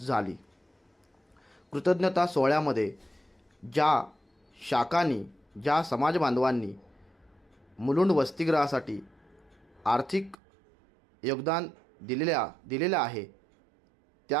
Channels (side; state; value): left; drops out; at 10.4 s